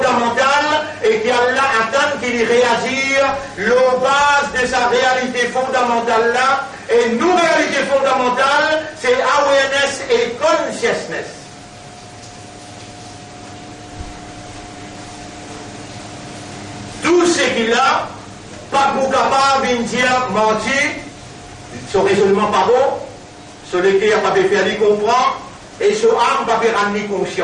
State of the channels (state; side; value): identical; both; correlation 1.00